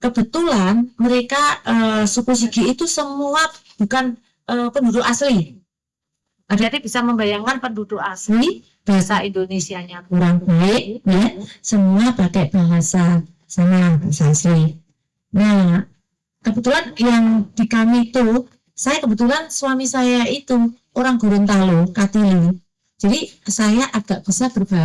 Kebetulan mereka suku Sigi itu semua bukan penduduk asli. Jadi bisa membayangkan penduduk asli, bahasa Indonesianya kurang baik, ya. Semua pakai bahasa asli. Nah, kebetulan yang di kami itu, saya kebetulan suami saya itu orang Gorontalo, Katili. Jadi saya agak bisa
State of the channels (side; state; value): both; identical; correlation 1.00